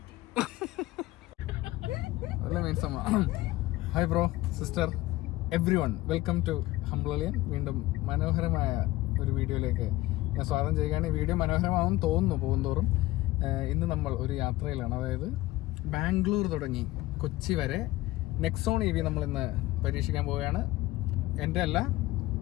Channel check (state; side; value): quieter; right; 17.9 dB